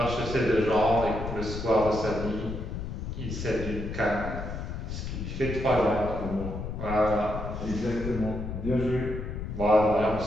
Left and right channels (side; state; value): left; noise; rumble, 6 dB below the sound